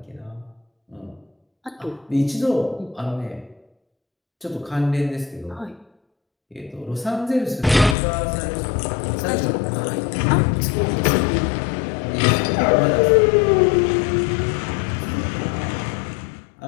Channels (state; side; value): drops out; right; at 8.0 s